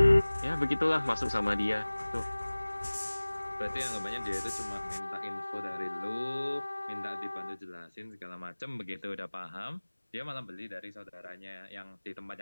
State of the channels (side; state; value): both; inverted; correlation -1.00